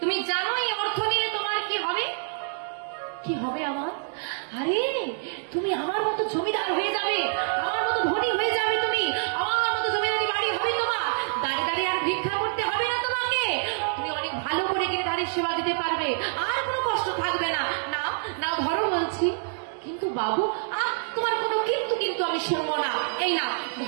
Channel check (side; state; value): left; silent; digital silence